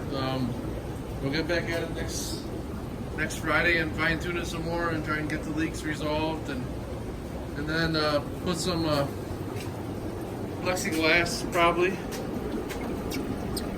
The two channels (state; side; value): identical; both; correlation 1.00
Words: We'll get back at it next Friday and fine tune it some more and try and get the leaks resolved, and then put some plexiglass probably